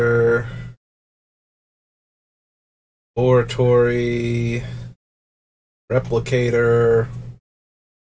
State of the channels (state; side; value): identical; both; correlation 1.00